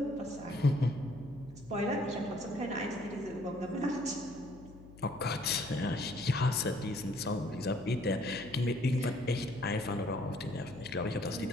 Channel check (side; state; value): left; noise; hum, 19 dB below the sound